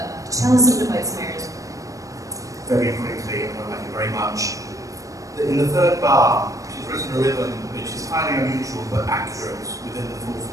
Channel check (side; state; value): left; late; 0.16 ms